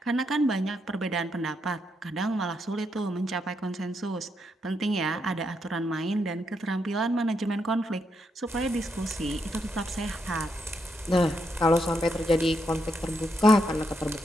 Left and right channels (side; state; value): both; normal; correlation 0.80